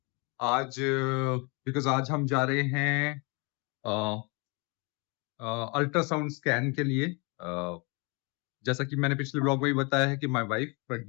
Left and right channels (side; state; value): right; quieter; 30.8 dB